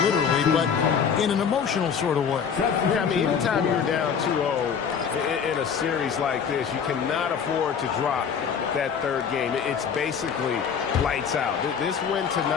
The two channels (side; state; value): right; quieter; 6.9 dB